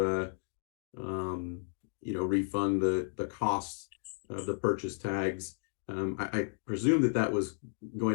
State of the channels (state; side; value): silent; right; digital silence